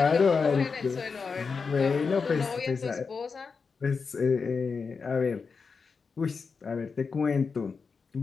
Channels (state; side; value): quieter; right; 5.1 dB